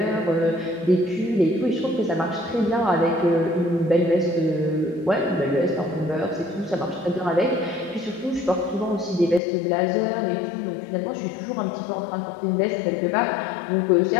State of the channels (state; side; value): drops out; right; at 9.4 s